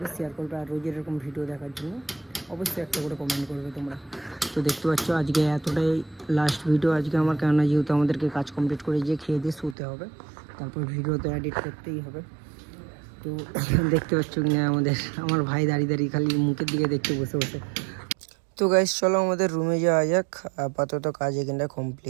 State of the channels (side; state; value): left; drops out; at 9.8 s